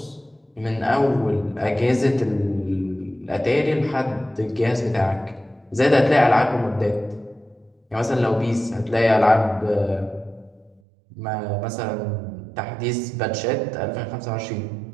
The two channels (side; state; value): left; drops out; at 10.8 s